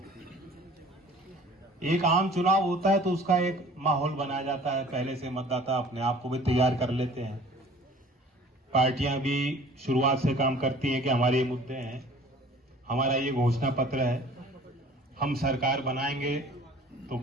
एक आम चुनाव होता है तो उसका एक माहौल बनाया जाता है, पहले से मतदाता अपने आप को भी तैयार कर लेते हैं। पार्टियां भी शुरुआत से काम करती हैं कि हमारे ये मुद्दे हैं, हमारा ये घोषणा पत्र है, हम सरकार बनाएंगे तो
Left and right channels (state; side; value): normal; both; correlation 0.49